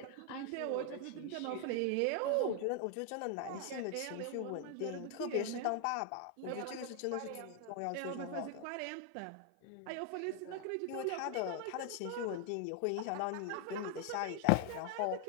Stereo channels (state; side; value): different; both; correlation 0.00